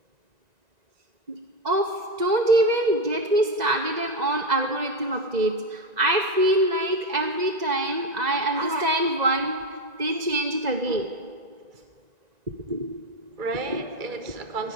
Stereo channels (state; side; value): late; left; 1.9 ms